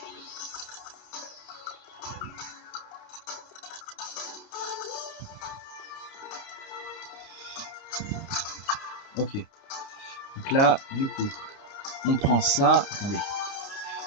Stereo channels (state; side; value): late; right; 29 ms